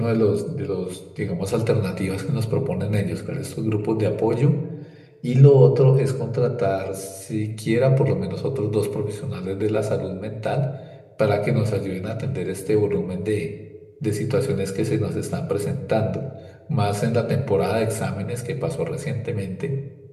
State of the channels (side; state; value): both; identical; correlation 1.00